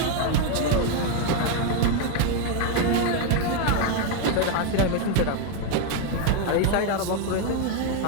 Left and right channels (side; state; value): both; different; correlation 0.01